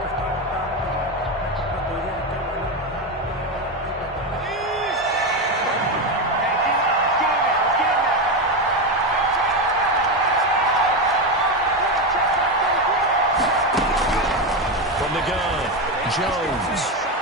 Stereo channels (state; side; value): normal; both; correlation 0.13